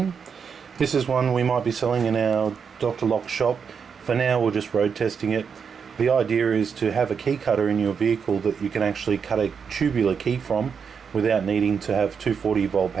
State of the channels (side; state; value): left; quieter; 6.4 dB